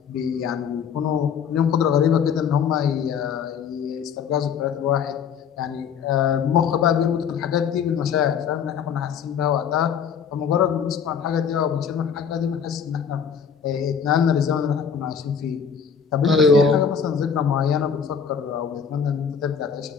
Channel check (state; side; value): quieter; right; 7.0 dB